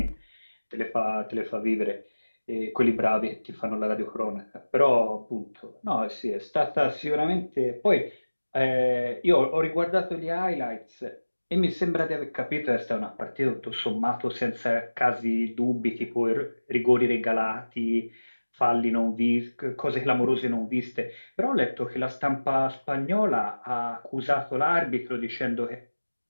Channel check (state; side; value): inverted; both; correlation -1.00